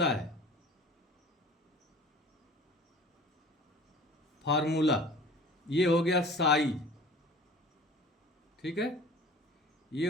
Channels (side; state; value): both; normal; correlation 0.45